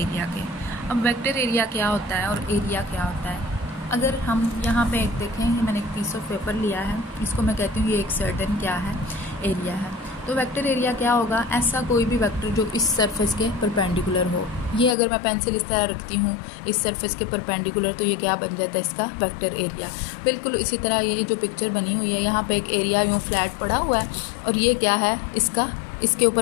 के। अब वेक्टर एरिया क्या होता है और एरिया क्या होता है, अगर हम यहाँ पे एक देखें, मैंने एक पीस ऑफ पेपर लिया है, इसको मैं कहती हूँ ये एक सर्टेन क्या है, एरिया है। तो वेक्टर एरिया क्या होगा, ऐसा कोई भी वेक्टर जो इस सरफेस के परपेंडिकुलर हो। ये अगर मैं पेंसिल इस तरह रखती हूँ इस सरफेस के परपेंडिकुलर, तो ये क्या बन जाता है, इसका वेक्टर एरिया। बिल्कुल इसी तरह ये जो पिक्चर बनी हुई है, यहाँ पे एक एरिया यूँ फ्लैट पड़ा हुआ है, और ये क्या है, इसका, इसके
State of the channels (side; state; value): right; drops out; at 15.0 s